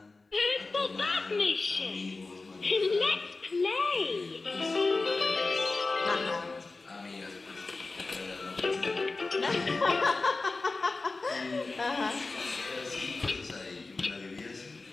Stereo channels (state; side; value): quieter; right; 3.6 dB